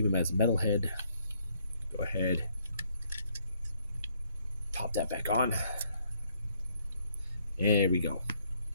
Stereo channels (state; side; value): inverted; both; correlation -0.68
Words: him as a metal head, go ahead, pop that back on. There we go.